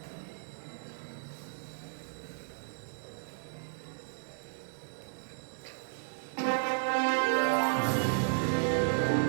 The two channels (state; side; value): silent; left; digital silence